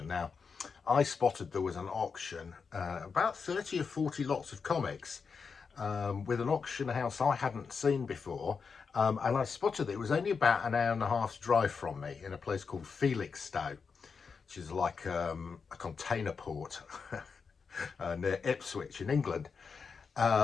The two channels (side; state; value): right; quieter; 5.5 dB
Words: Now, I spotted there was an auction, about 30 or 40 lots of comics, with an auction house I hadn't seen before. And I spotted it was only about an hour and a half's drive from me in a place called Felixstowe, which is like a container port near Ipswich in England.